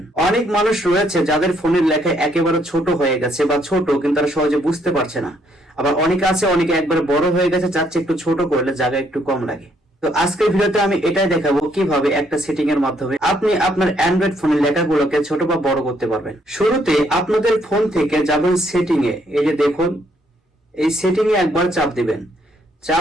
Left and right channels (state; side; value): normal; both; correlation 0.70